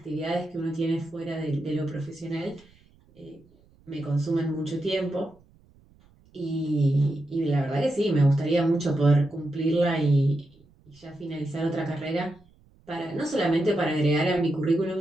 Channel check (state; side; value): noise; right; rumble, 29 dB below the sound